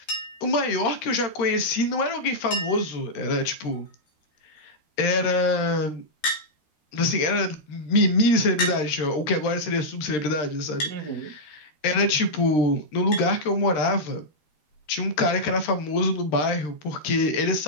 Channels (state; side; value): late; right; 13 ms